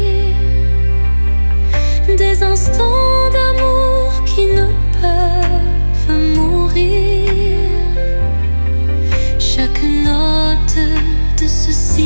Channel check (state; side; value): inverted; both; correlation -1.00